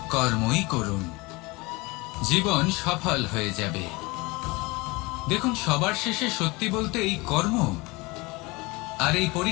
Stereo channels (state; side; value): quieter; right; 24.4 dB